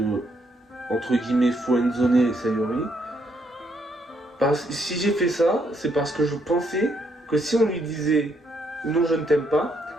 entre guillemets, friendzoner Sayori. Si j'ai fait ça, c'est parce que je pensais que si on lui disait « non, je ne t'aime pas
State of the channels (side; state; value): both; normal; correlation 0.74